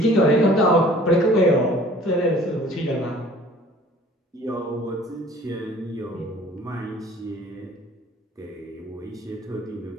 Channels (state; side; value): normal; both; correlation 0.51